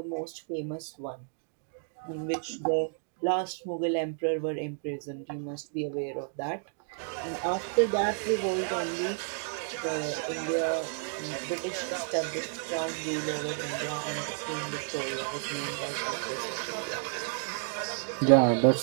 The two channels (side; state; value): left; silent; 57 dB below the other